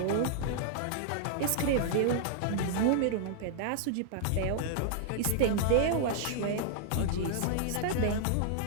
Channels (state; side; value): different; both; correlation -0.01